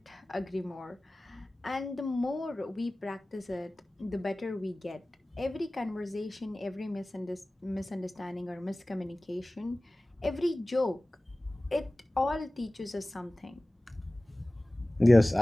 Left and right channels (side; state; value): both; normal; correlation 0.98